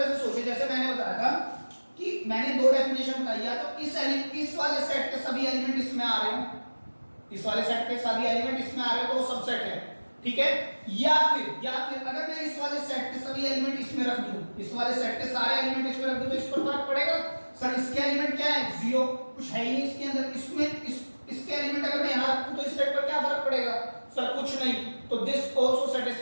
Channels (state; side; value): inverted; both; correlation -1.00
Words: से सोचे, जैसे मैंने बताया था कि मैंने दो डेफिनेशन बताई, या तो इस वाले सेट के सभी एलिमेंट इसमें आ रहे हो, इस वाले सेट के सभी एलिमेंट इसमें आ रहे हो तो वो सबसेट है, ठीक है। या फिर अगर मैं इस वाले सेट के सभी एलिमेंट इसमें रख दूं, इस वाले सेट के सारे एलिमेंट इसमें रख दूं, तो इस पर फर्क पड़ेगा। सर इसके एलिमेंट क्या है, 0, कुछ है ही नहीं इसके अंदर। इसके एलिमेंट अगर मैं यहां रखूं तो इस सेट पर क्या फर्क पड़ेगा, सर कुछ नहीं। तो this also